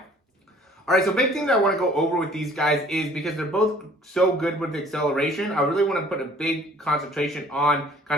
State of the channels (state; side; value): normal; both; correlation 0.54